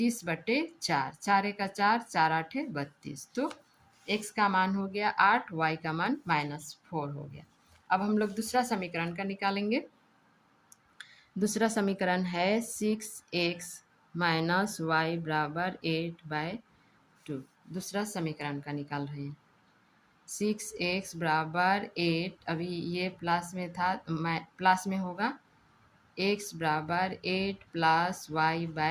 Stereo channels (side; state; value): both; identical; correlation 1.00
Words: 4 एका 4, 4 आठे 32, तो x का मान हो गया 8, y का मान -4 हो गया। अब हम लोग दूसरा समीकरण का निकालेंगे। दूसरा समीकरण है 6x माइनस वाई बराबर 8/2। दूसरा समीकरण का निकाल रहे हैं। 6x बराबर 8, अभी ये प्लस में था, प्लस में होगा, x बराबर 8 प्लस